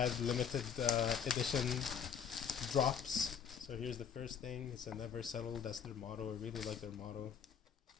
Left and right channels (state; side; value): quieter; right; 7.4 dB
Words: limited edition drops. So here's the first thing. It's a never settle. That's their motto. I really like their motto.